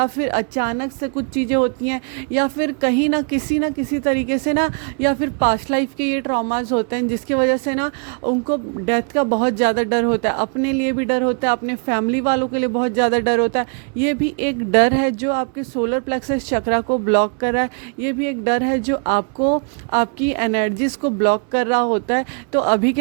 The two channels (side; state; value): left; quieter; 38.9 dB